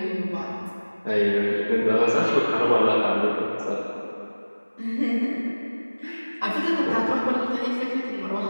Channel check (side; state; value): both; inverted; correlation -1.00